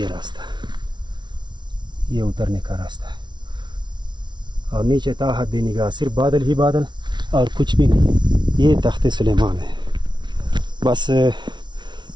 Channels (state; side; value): late; left; 0.22 ms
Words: راستہ، یہ اترنے کا راستہ ہے۔ اور نیچے تا حد نگاہ صرف بادل ہی بادل اور کچھ بھی نہیں۔ یہ تخت سلیمان ہے، بس